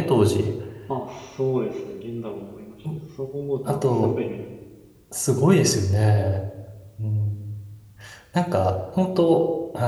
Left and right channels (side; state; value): both; identical; correlation 1.00